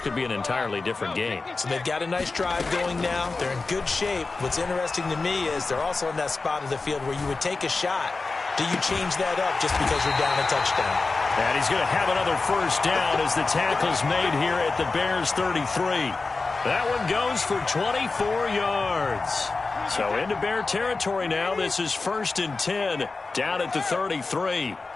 be an entirely different game. So they've got a nice drive going now. They're in good shape. What's interesting to me is they're also in that spot of the field where you would take a shot. Do you change that up just because you're down a touchdown? And he's going to have another 1st down as the tackle's made here at the Bears 33. That one goes for 24 yards. So into Bear territory now. This is 1st and 10 down at the 33.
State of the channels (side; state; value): right; quieter; 3.9 dB